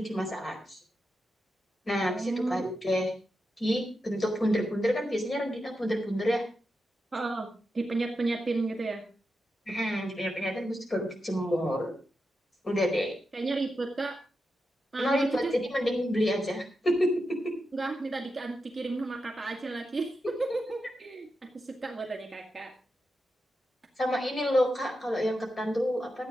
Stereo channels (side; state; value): both; normal; correlation 0.88